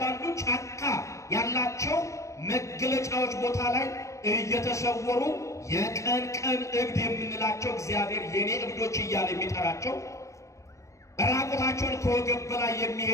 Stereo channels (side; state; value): right; late; 0.15 ms